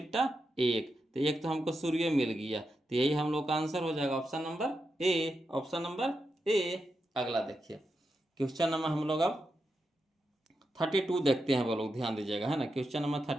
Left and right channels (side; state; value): both; normal; correlation 0.87